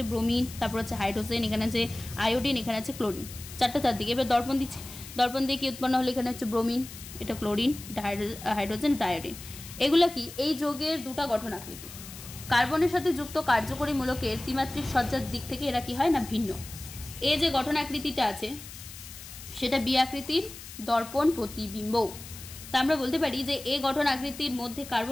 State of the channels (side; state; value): left; noise; hiss, 14 dB below the sound